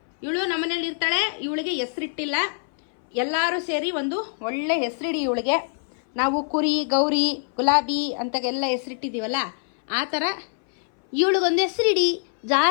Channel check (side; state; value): right; silent; 59 dB below the other